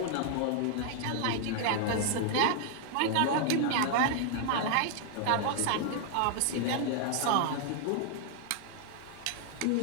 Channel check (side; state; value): both; different; correlation 0.00